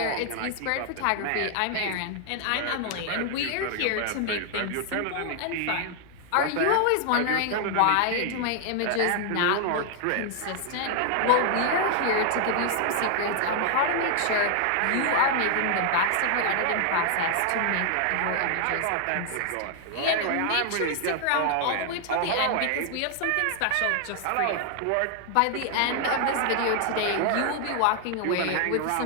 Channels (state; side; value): different; both; correlation 0.00